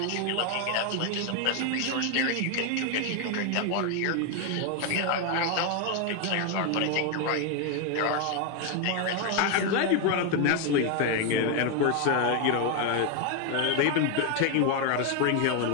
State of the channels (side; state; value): both; different; correlation 0.01